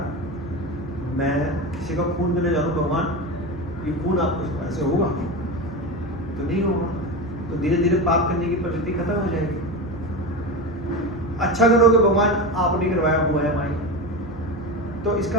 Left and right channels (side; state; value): both; normal; correlation 0.22